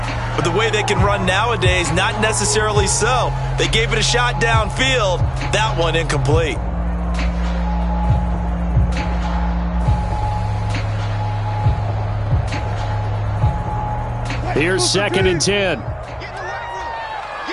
But the way they can run nowadays, not necessarily so. They gave it a shot downfield. That one incomplete. Here's 2nd and 10.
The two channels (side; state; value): both; identical; correlation 1.00